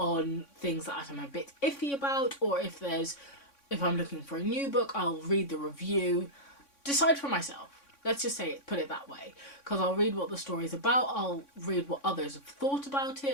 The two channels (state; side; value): late; right; 3.6 ms